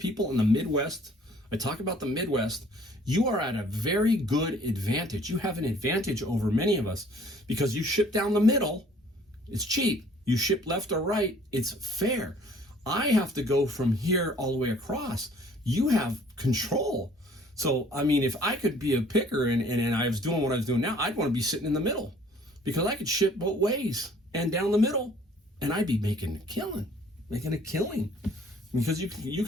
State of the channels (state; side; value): normal; both; correlation 0.55